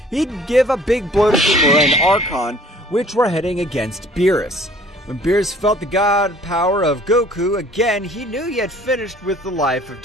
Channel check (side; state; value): both; normal; correlation 0.53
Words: He'd give a big blow to Kimura and Archon, which were heading against Beerus. When Beerus felt the god power of Goku again, he knew he had finished with the life of